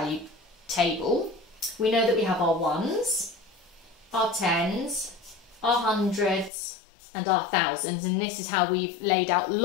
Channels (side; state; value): right; drops out; at 6.5 s